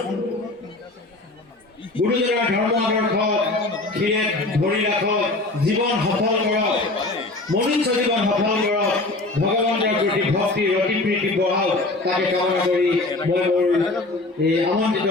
গুৰুজনাৰ ধৰ্ম আদৰ্শ ধৰি ৰাখক, জীৱন সফল কৰক, মনুষ্য জীৱন সফল কৰক, ভগৱানৰ প্ৰতি ভক্তি অতি প্ৰীতি বঢ়াওক, তাকে কামনা কৰি মই মোৰ এই আমন্ত্ৰিত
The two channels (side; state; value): right; quieter; 3.0 dB